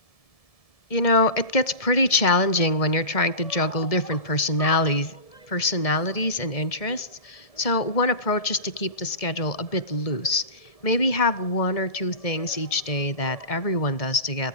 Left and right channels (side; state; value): right; late; 1.7 ms